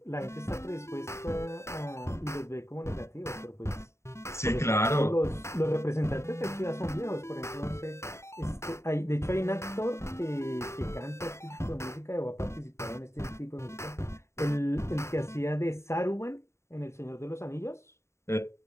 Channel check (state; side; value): late; right; 0.13 ms